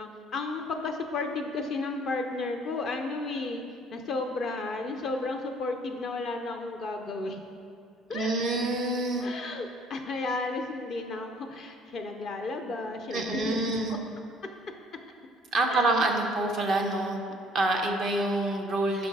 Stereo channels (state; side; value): normal; both; correlation 0.58